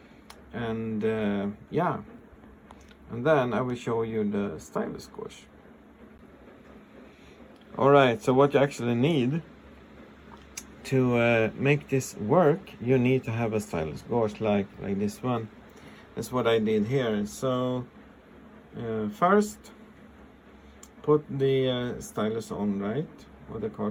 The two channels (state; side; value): identical; both; correlation 1.00